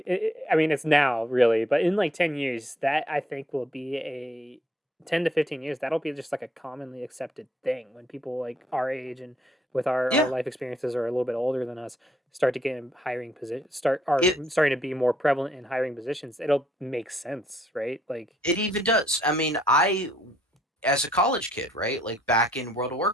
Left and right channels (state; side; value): normal; both; correlation 0.68